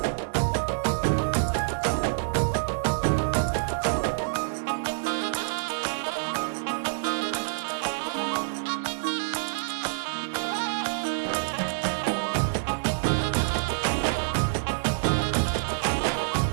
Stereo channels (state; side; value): silent; left; digital silence